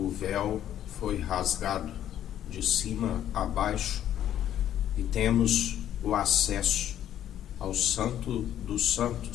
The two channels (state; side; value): quieter; right; 11.1 dB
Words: véu foi rasgado de cima a baixo e temos o acesso ao Santo dos